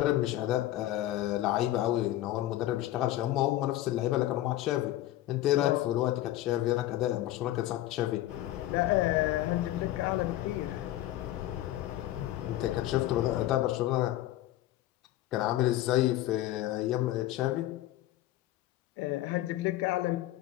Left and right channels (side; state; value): right; quieter; 14.8 dB